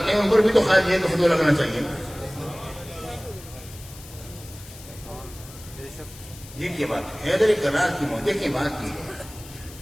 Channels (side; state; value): left; noise; hiss, 18 dB below the sound